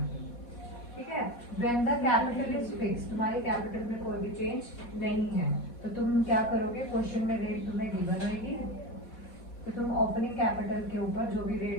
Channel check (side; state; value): right; late; 4.2 ms